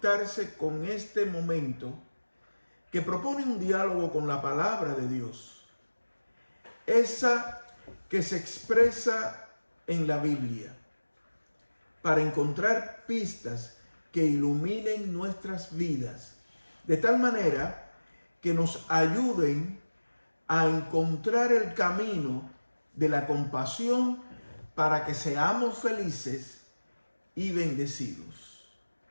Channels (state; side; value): inverted; both; correlation -1.00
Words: con este momento que propone un diálogo con la palabra de Dios. Esa que se expresa en la Biblia, para encontrar pistas que iluminen nuestras vidas, de tal manera que nos ayuden a encontrar el camino de la compasión para que seamos felices y bendecidos.